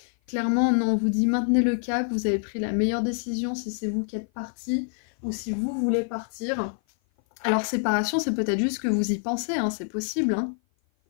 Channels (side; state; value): right; silent; 56 dB below the other